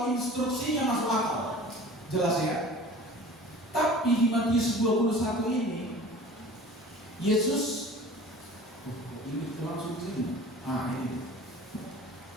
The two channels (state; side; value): normal; both; correlation 0.42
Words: instruksinya masuk akal, jelas ya. Tapi di Matius 21 ini, Yesus, ini langsung sini. Ini.